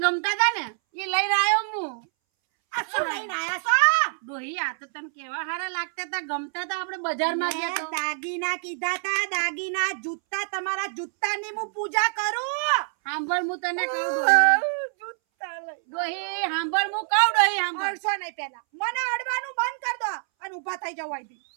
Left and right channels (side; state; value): left; silent; 61 dB below the other